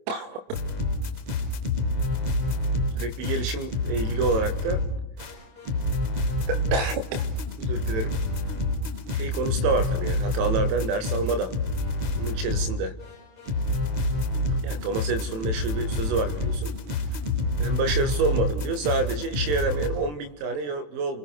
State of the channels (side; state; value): left; late; 27 ms